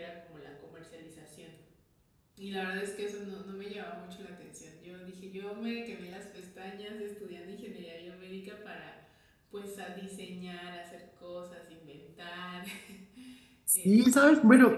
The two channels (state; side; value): identical; both; correlation 1.00